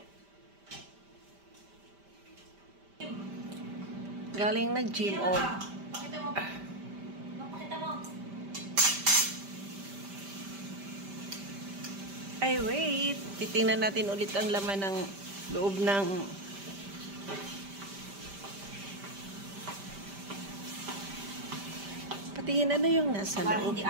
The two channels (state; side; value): late; left; 5.1 ms